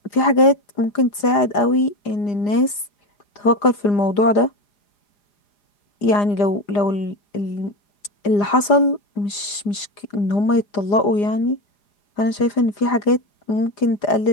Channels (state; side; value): late; right; 4.9 ms